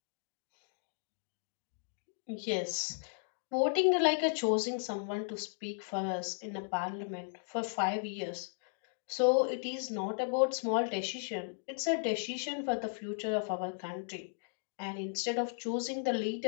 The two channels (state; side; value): silent; right; digital silence